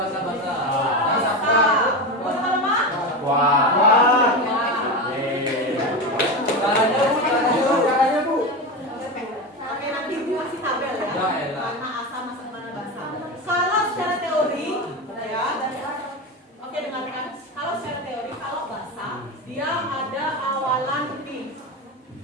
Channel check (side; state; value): both; normal; correlation 0.20